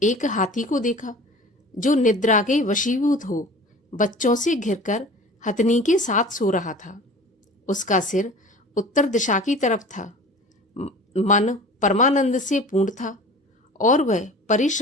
एक हाथी को देखा, जो निद्रा के वशीभूत हो बच्चों से घिरकर हथनी के साथ सो रहा था। उसका सिर उत्तर दिशा की तरफ था। मन परमानंद से पूर्ण था और वह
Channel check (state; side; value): normal; both; correlation 0.41